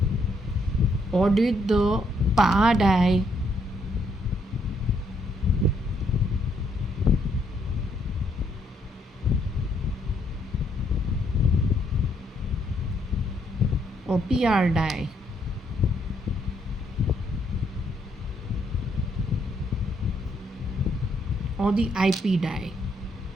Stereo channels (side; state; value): both; normal; correlation 0.72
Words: Or did the Pa die? Or PR die? Or the IP die?